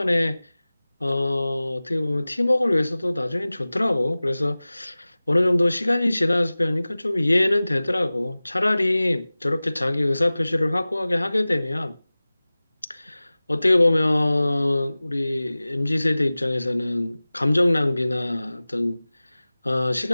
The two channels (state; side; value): inverted; both; correlation -0.98